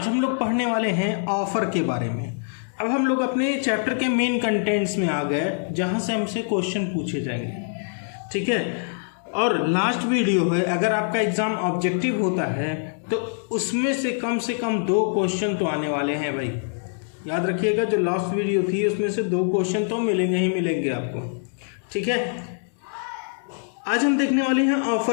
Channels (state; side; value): silent; right; digital silence